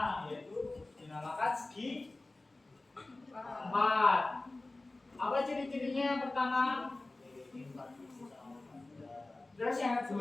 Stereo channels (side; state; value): right; quieter; 3.0 dB